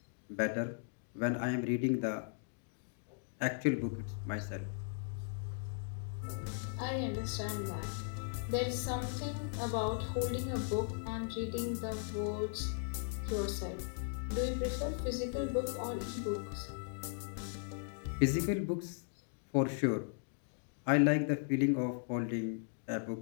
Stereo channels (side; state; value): right; silent; digital silence